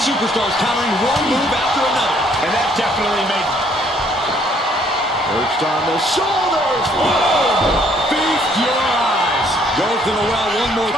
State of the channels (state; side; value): normal; both; correlation 0.64